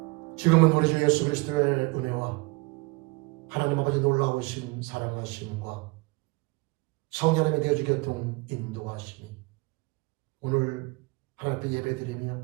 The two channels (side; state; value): left; quieter; 26.1 dB